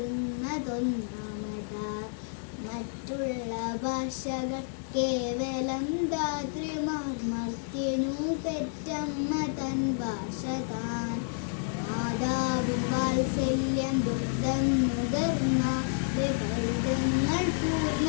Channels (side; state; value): right; silent; digital silence